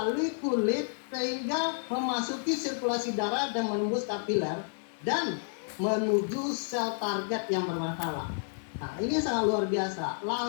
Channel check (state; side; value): silent; right; digital silence